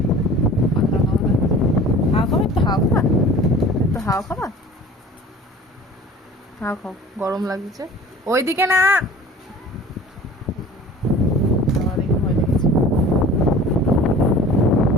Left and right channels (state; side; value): normal; both; correlation 0.44